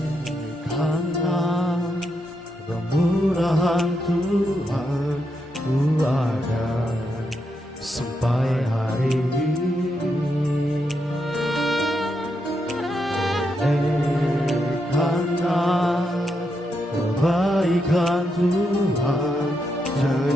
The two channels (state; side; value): normal; both; correlation 0.82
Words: Kemurahan Tuhan ku ada sampai hari ini.